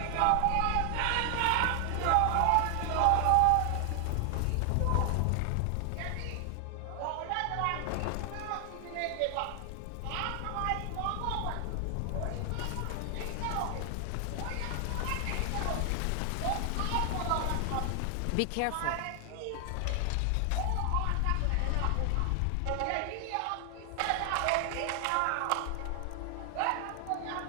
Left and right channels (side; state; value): both; different; correlation 0.00